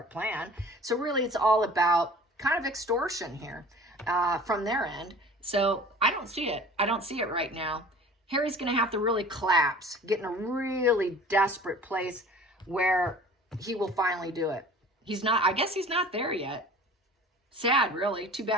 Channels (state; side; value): normal; both; correlation 0.44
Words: plan. So really, it's all about kind of extortion here from their end. So I don't see it. I don't see it right now. Harry's going to have to really collapse, get in a really desperate place where he will finally do it. He's not, I guess he's not there yet. Sad, really. Too